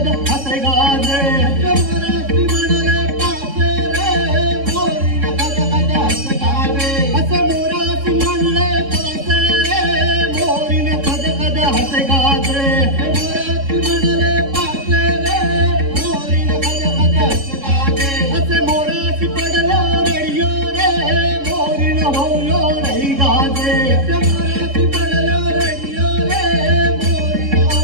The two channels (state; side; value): late; left; 3.6 ms